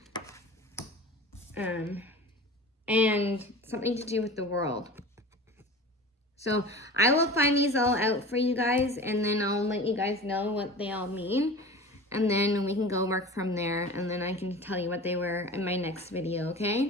And something to do with the world. So I will find these all out for you guys, and then I'll let you guys know what they all mean, and then we can go work from there, and then I can tell you what they were in my next video,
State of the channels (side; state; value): both; normal; correlation 0.36